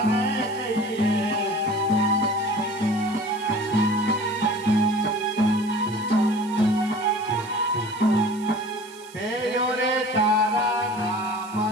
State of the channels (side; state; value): right; noise; hiss, 22 dB below the sound